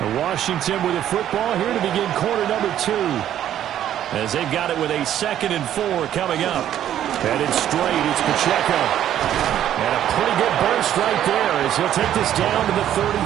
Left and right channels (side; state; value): left; quieter; 11.2 dB